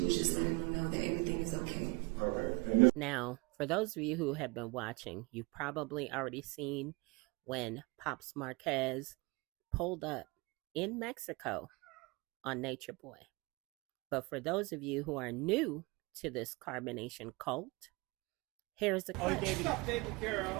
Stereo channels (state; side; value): quieter; left; 26.5 dB